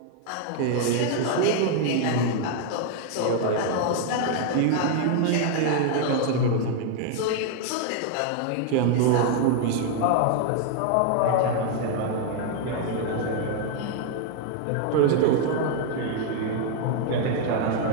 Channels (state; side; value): different; both; correlation 0.00